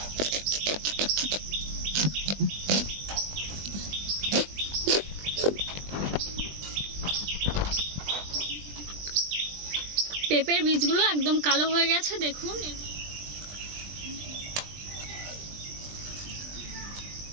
পেঁপের বীজগুলো একদম কালো হয়ে গেছে, দেখুন।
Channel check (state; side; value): late; left; 20 ms